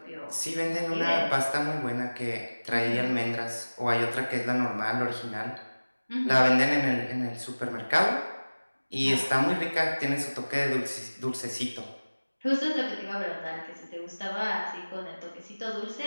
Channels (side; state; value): both; inverted; correlation -1.00